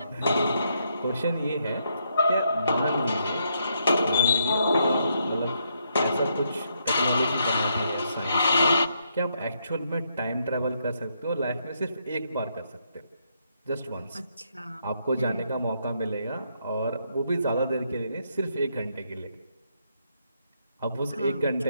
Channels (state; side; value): inverted; both; correlation -0.76